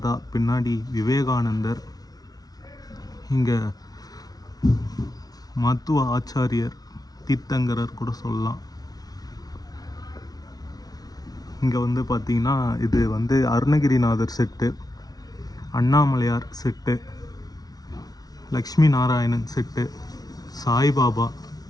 பின்னாடி விவேகானந்தர். இங்கே மத்துவ ஆச்சாரியர், தீர்த்தங்கரர் கூட சொல்லலாம். இங்கே வந்து பார்த்திங்கன்னா இது வந்து Arunagirinathar set, Annamalaiyar set, Lakshmi Narayanan set, Saibaba,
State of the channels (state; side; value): late; right; 0.19 ms